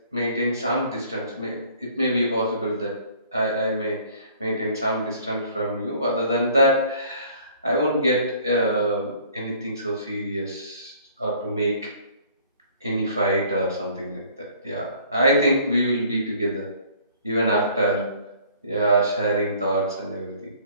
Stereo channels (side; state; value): both; inverted; correlation -0.55